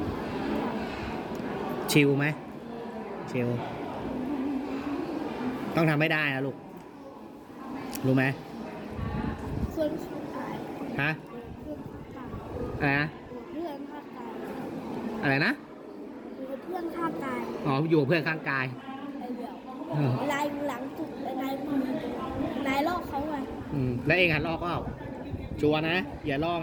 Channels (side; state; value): both; identical; correlation 1.00